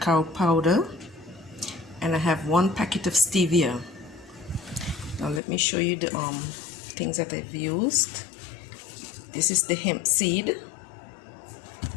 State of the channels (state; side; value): drops out; right; at 5.4 s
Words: powder, and I have 1 packet of stevia. Now let me show you the things that I've used. This is the hemp seed.